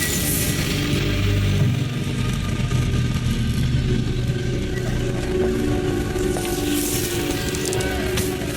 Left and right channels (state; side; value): identical; both; correlation 1.00